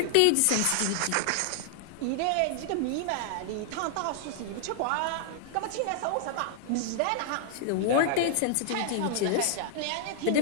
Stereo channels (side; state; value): both; different; correlation -0.01